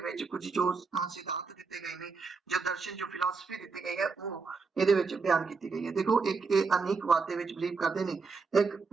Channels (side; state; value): left; quieter; 4.6 dB